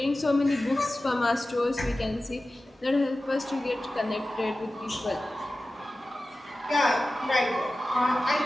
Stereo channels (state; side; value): normal; both; correlation 0.95